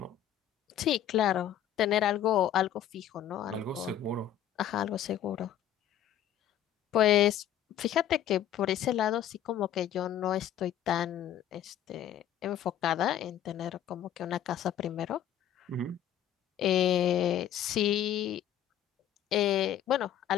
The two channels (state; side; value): quieter; right; 10.5 dB